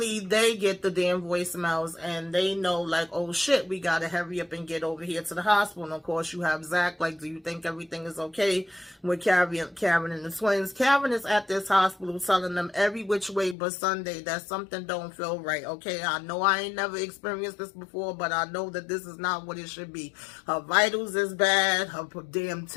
they get the damn voicemails and they know, like, oh shit, we gotta hurry up and get over here to the hospital. And of course, you have Zach, like, do you think everything is okay with Karen and the twins? Karen is at this hospital telling them every which way but Sunday that something don't feel right, okay? I know I ain't never experienced this before, but I know that this is not what it should be. Her vitals is bad, her damn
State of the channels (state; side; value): drops out; right; at 13.6 s